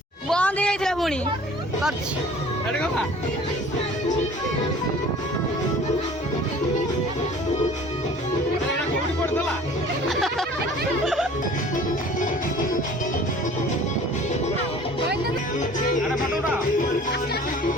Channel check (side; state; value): both; normal; correlation 0.48